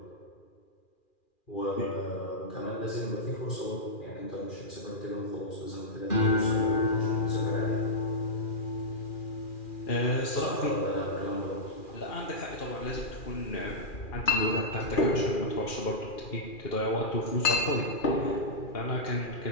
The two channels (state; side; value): late; right; 2.4 ms